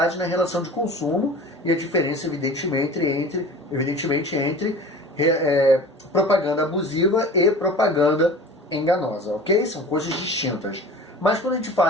na relação de consumo e a diferença, evidentemente, entre propaganda abusiva e propaganda enganosa, ok? São coisas distintas. Mas quando a gente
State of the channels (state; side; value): normal; both; correlation 0.39